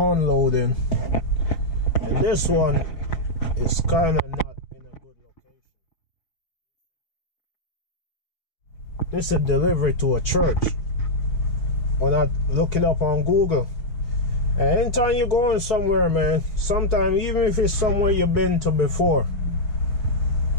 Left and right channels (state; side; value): late; right; 5.3 ms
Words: and this one is kind of not in a good location. This is a delivery to a church. When I look it up on Google, and anytime you're going somewhere, man, sometimes even if it's somewhere you've been to before,